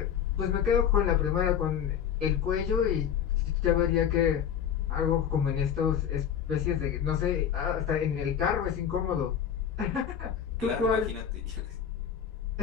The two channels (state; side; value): quieter; right; 8.6 dB